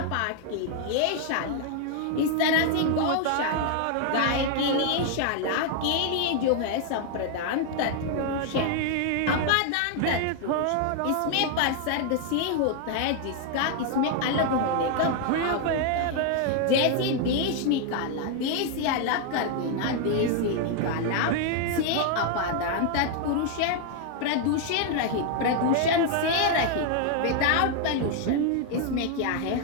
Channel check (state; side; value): different; both; correlation 0.00